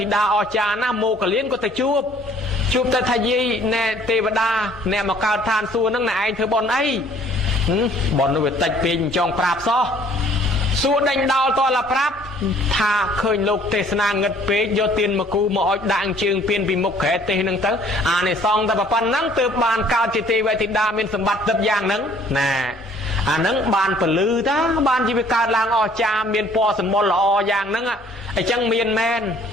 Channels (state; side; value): normal; both; correlation 0.57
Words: ីតាអស្ចារ្យណាស់មោគលានក៏ទៅជួបទៅថាយាយណែទេវតាអ្នកមកកើតឋានសួគ៌ហ្នឹងណែឯងធ្វើបុណ្យអីបុណ្យនោះវាតិចពេកចង់ប្រាប់សោះសួរដេញដោលតលប្រាប់ថាឃើញលោកទេសនាងឹតពេកយកទៀនមកគូមកអុជដាក់ជើងពៀនពីមុខក្រែទេសហ្នឹងទៅអានេះសងតែប៉ុណ្ណឹងទើបបានកើតជាទេវធីតាមានសម្បត្តិទឹកយ៉ាងហ្នឹងណាអាហ្នឹងបានពលឺតាបានជីវិតកើតឡើងអស្ចារ្យមានពណ៌សម្បុរល្អយ៉ាងហ្នឹងអញ្ចឹងមានមែន